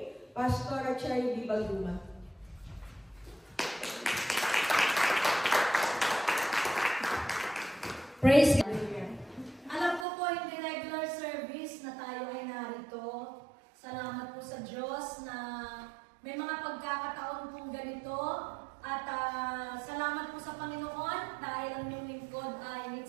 Pastor Cherry Bibalduma. Praise God. Alam ko po hindi regular service na tayo ay narito. Salamat po sa Diyos na may mga pagkakataon pong ganito. At salamat po sa Panginoon dahil ang inyong lingkod ay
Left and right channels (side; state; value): left; drops out; at 10.1 s